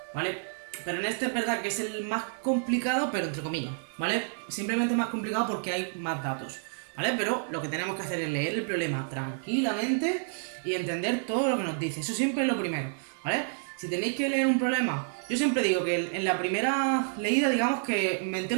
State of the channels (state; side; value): silent; left; digital silence